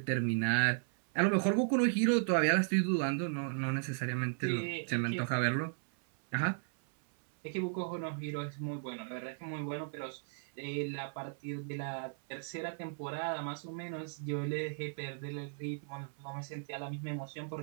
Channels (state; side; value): silent; left; 54 dB below the other